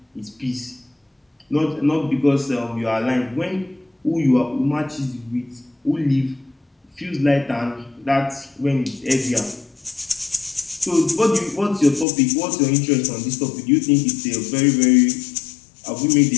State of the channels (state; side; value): drops out; right; at 12.1 s